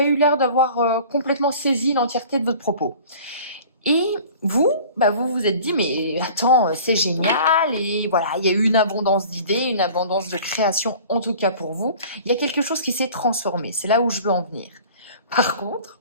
eu l'air d'avoir complètement saisi l'entièreté de votre propos. Et vous, vous vous êtes dit mais attends, c'est génial et voilà, il y a eu une abondance d'idées, une abondance de création en tout cas pour vous. Il y a quelque chose qui s'est transformé, c'est là où je veux en venir. Par contre,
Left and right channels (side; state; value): both; inverted; correlation -0.45